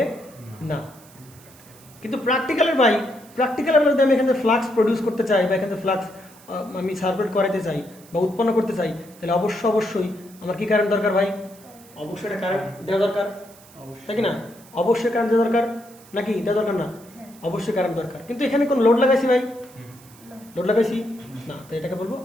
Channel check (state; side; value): noise; right; hiss, 24 dB below the sound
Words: না। কিন্তু প্র্যাকটিক্যালের যদি আমি এখানে ফ্লাক্স প্রডিউস করতে চাই, বা এখানে ফ্লাক্স আমি সার্কুলেট করাতে চাই বা উৎপন্ন করতে চাই, তাহলে অবশ্যই আমার কি কারেন্ট দরকার ভাই? অবশ্যই একটা কারেন্ট দেওয়া দরকার, তাই কি না? অবশ্যই কারেন্ট দেওয়া দরকার, নাকি দেওয়া দরকার না? অবশ্যই কারেন্ট দরকার। কিন্তু এখানে কোন লোড লাগাইছি ভাই? লোড লাগাইছি না, তো এটাকে বলবো